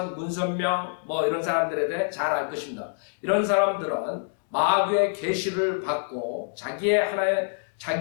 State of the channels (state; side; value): silent; right; digital silence